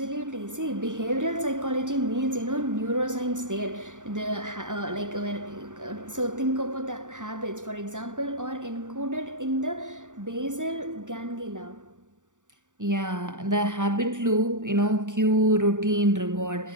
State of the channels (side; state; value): left; late; 0.86 ms